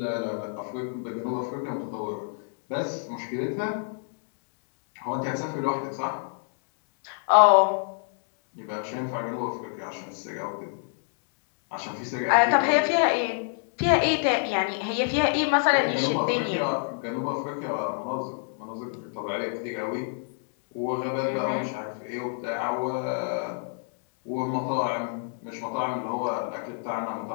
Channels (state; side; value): silent; right; 59 dB below the other